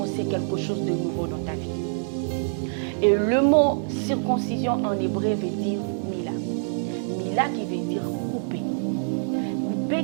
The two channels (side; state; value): left; silent; digital silence